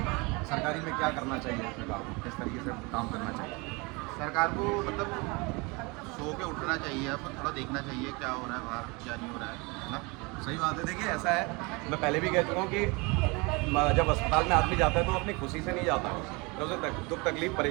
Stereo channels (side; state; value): left; quieter; 27.4 dB